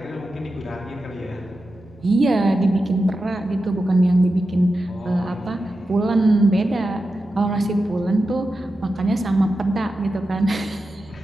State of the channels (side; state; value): both; normal; correlation 0.91